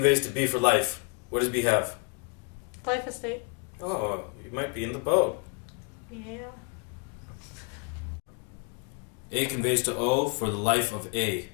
to B for life. What does B have? Life estate. Oh, you might be in the boat. Yeah. A conveys to O for the life of A.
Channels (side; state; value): right; quieter; 34.8 dB